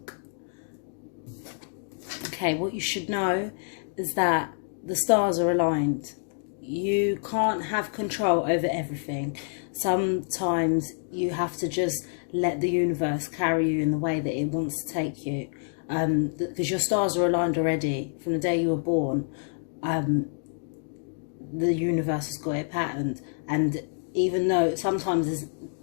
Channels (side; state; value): right; silent; digital silence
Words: Okay, what you should know is that the stars are aligned. You can't have control over everything. Sometimes you have to just let the universe carry you in the way that it wants to take you. Because your stars are aligned already. From the day you were born, the universe has got it patterned. And even though sometimes